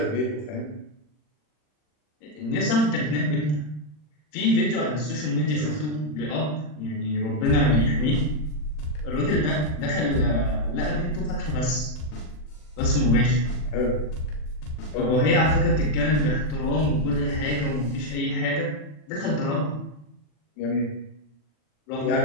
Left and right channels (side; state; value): right; late; 40 ms